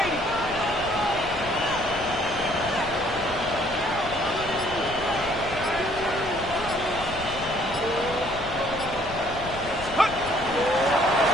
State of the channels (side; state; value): left; noise; rumble, 13 dB below the sound